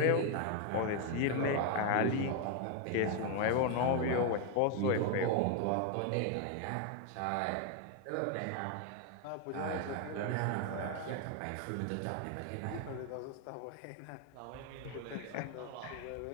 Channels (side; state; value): both; different; correlation 0.01